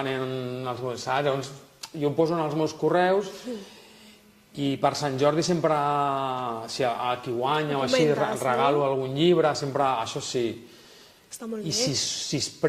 els meus... Llavors jo ho poso en els meus correus i per Sant Jordi sempre, si a qui guanya o així, regalo algun llibre, sempre, això sí. I si es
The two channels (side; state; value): both; identical; correlation 1.00